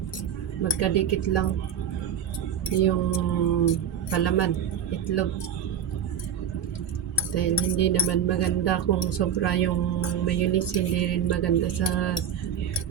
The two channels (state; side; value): quieter; left; 8.3 dB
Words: magkadikit lang yung palaman, itlog. Dahil hindi naman maganda kung sobra yung mayonnaise, hindi rin maganda sa